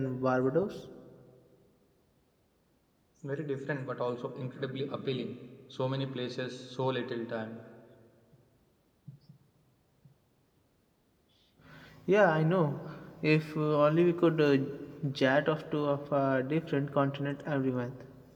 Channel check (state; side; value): identical; both; correlation 1.00